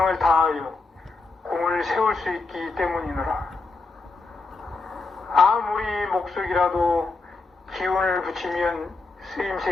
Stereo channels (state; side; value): quieter; right; 3.7 dB